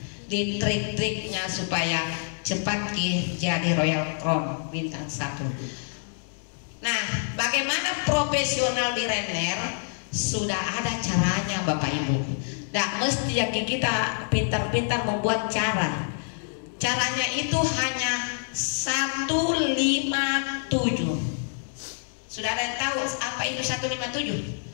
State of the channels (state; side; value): silent; right; 60 dB below the other